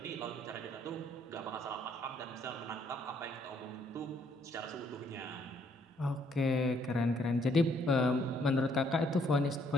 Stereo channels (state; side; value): normal; both; correlation 0.68